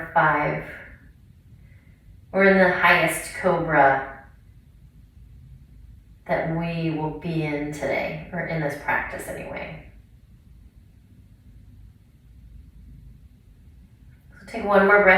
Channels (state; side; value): identical; both; correlation 1.00